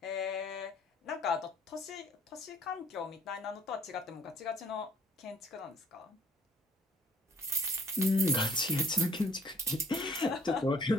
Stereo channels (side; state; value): both; normal; correlation 0.59